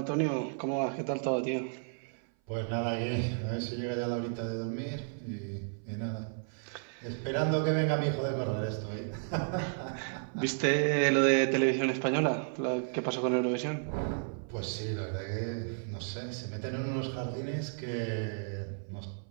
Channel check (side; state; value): left; silent; 56 dB below the other